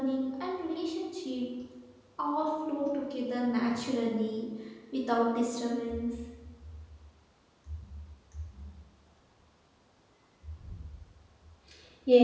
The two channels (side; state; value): both; identical; correlation 1.00